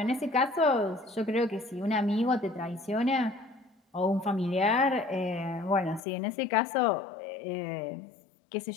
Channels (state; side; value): drops out; right; at 6.0 s